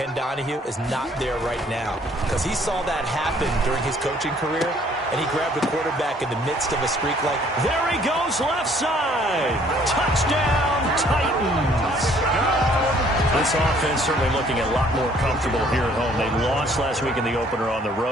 Donahue, is not there right now. Because he saw that happen during his coaching career, and he grabbed the quarterback in the midst of a streak like... There he goes, left side. Touchdown, Titans. This offense certainly looking a lot more comfortable here at home. They lost last week in the opener on the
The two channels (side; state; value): both; normal; correlation 0.60